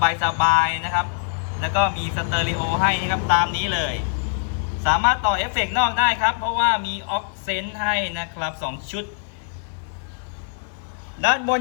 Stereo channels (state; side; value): silent; right; digital silence